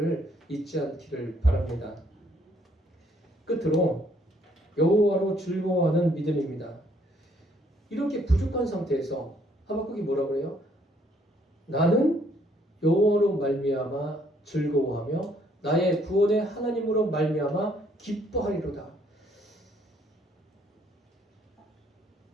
잊지 않기를 바랍니다. 끝으로 여호와로 즐거워하는 믿음입니다. 이렇게 부족한 상태에서 하박국이 뭐라고 그래요? 나는 여호와로 말미암아 즐거워하며 나의 구원의 하나님으로 말미암아 기뻐하리로다.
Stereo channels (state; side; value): normal; both; correlation 0.66